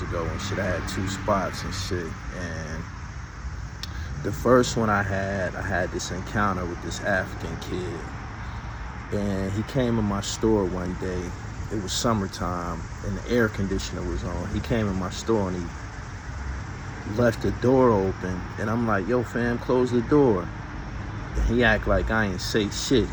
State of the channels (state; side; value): identical; both; correlation 1.00